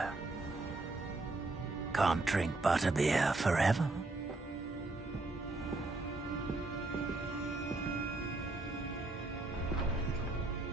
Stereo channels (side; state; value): left; quieter; 3.1 dB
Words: Can't drink butterbeer forever.